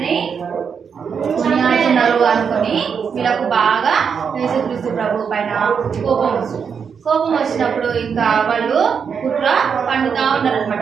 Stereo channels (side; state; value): left; quieter; 6.6 dB